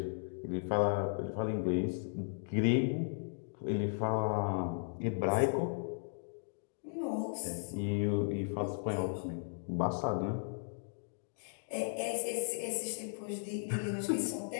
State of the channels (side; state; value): right; silent; digital silence